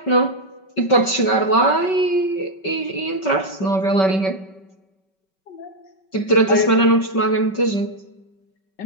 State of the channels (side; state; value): right; late; 5.3 ms